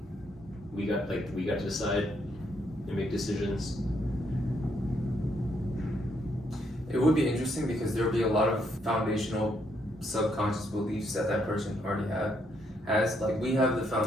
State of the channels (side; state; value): both; normal; correlation 0.74